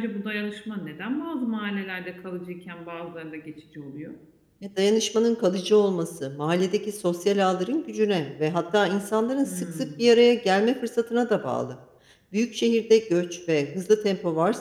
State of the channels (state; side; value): identical; both; correlation 1.00